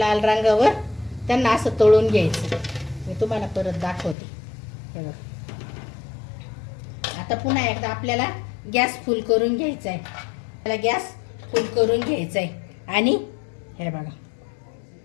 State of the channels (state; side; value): drops out; right; at 4.2 s